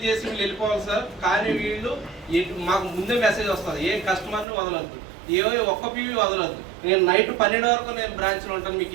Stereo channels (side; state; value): left; drops out; at 4.5 s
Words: చేసి వీళ్ళు వెళ్ళిపోవాలి సార్. కానీ వీళ్ళు మాకు ముందే మెసేజ్ వస్తుంది, ఏ కస్టమర్ని వదలొద్దు, ఒక్క పీవీ వదలొద్దు. నేను నైట్ 12 వరకు నేను బ్రాంచ్లో ఉంటాను, మీకు